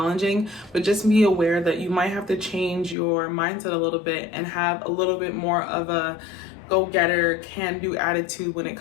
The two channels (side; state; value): right; drops out; at 3.0 s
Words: but just be aware that you might have to change your mindset a little bit and have a little bit more of a go-getter, can-do attitude when it